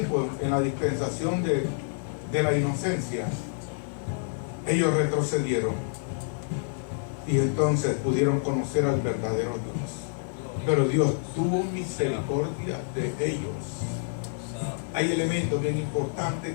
en la dispensación de la inocencia, ellos retrocedieron y entonces pudieron conocer al verdadero Dios. Pero Dios tuvo misericordia de ellos. Hay elementos bien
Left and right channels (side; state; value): right; silent; 59 dB below the other